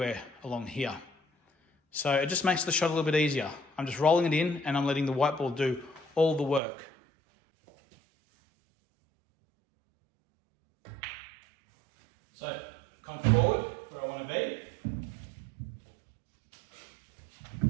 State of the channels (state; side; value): drops out; left; at 6.6 s